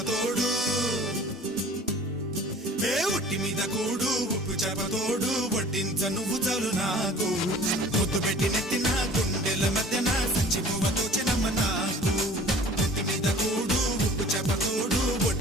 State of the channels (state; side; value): normal; both; correlation 0.46